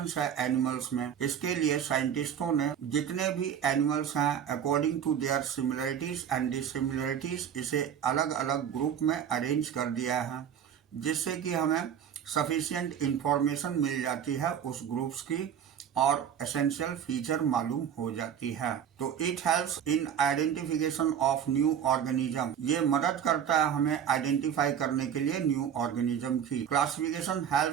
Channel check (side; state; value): left; quieter; 8.7 dB